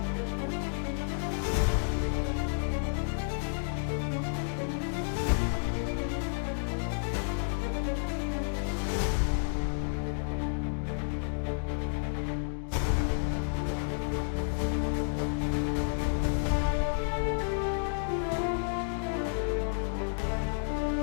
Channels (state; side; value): silent; right; digital silence